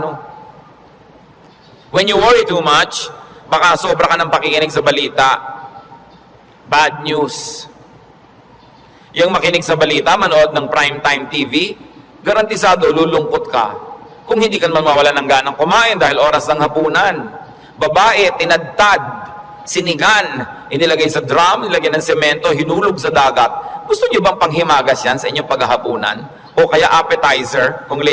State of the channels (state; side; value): identical; both; correlation 1.00